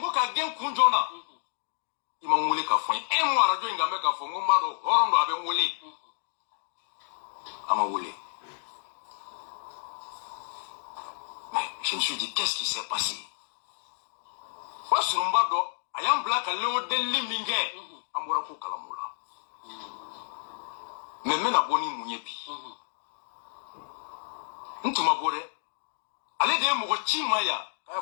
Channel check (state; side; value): silent; right; 58 dB below the other